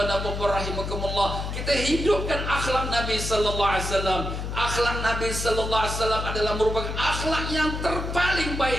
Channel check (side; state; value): left; noise; hum, 4 dB below the sound